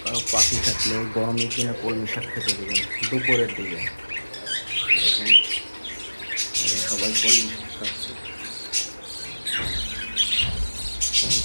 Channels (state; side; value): inverted; both; correlation -1.00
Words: কারো পাখি থাকলে গরমের দিনে কলমি শাক খেতে দেবেন দুপুরের দিকে। দেখেন সবাই কলমি শাক খাচ্ছে।